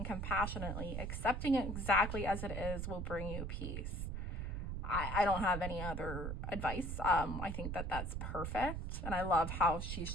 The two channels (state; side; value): noise; right; rumble, 3 dB below the sound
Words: compassionately, accepting it exactly as it is will bring you peace. I don't have any other advice. I think that that's perfect. And I love how she's